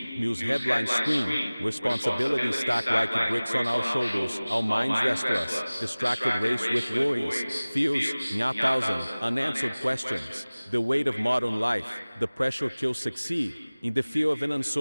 news headlines scream, responsibilities stack like bricks on our shoulders, our minds restless, distracted race with worries, fears, and 1,000 unanswered questions. The weight of modern life, the pressure to succeed, in the fear of an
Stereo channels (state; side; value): inverted; both; correlation -0.99